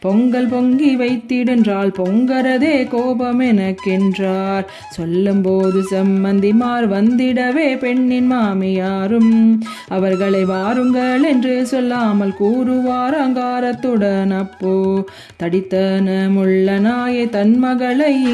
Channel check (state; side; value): identical; both; correlation 1.00